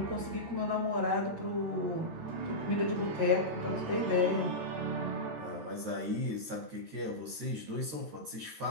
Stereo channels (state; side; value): late; left; 13 ms